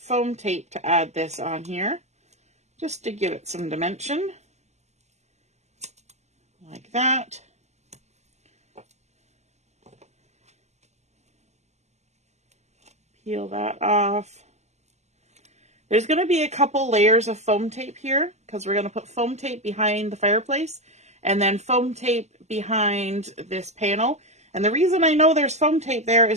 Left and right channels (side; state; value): left; late; 0.33 ms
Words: tape to add this on here, just to give it some dimension, like that. Peel that off. There's going to be a couple layers of foam tape here because we're going to put foam tape behind the fireplace and then foam tape behind this panel. And the reason I know there's foam tape there